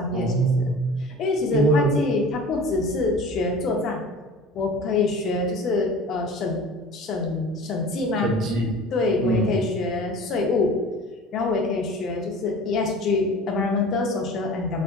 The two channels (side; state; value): both; normal; correlation 0.40